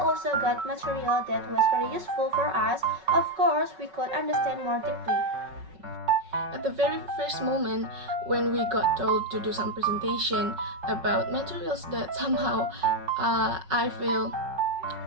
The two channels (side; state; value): left; late; 5.4 ms